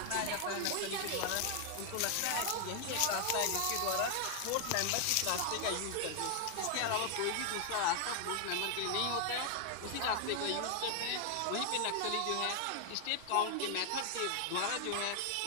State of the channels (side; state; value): both; different; correlation 0.00